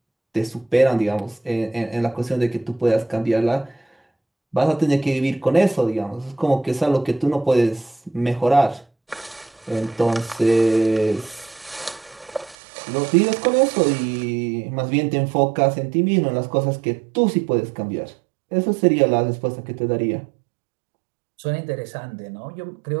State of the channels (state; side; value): drops out; left; at 12.6 s